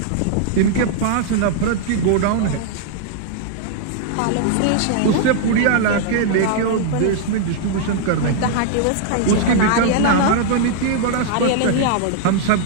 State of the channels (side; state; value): both; different; correlation -0.01